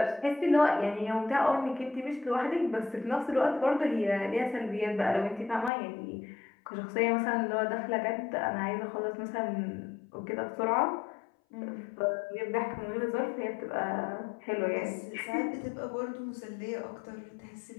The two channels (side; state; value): right; drops out; at 5.7 s